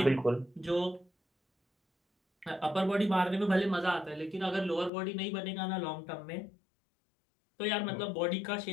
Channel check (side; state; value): right; drops out; at 4.9 s